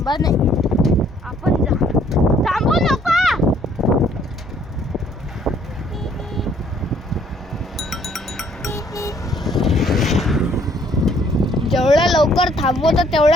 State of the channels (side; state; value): both; normal; correlation 0.63